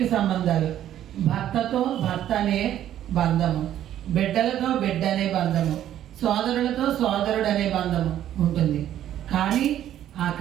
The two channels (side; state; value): left; quieter; 11.5 dB